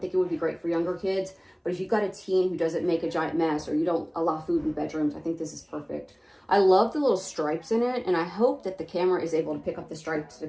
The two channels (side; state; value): both; identical; correlation 1.00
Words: think it would be great for younger kids. But if you've got a teen who doesn't make a giant mess, or you don't allow food in bedrooms, I think this is perfect. I love the little stripes in it, and I hope that the camera is able to pick up the stripes,